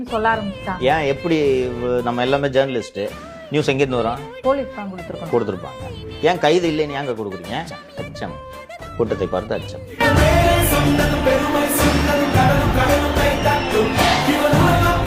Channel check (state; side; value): identical; both; correlation 1.00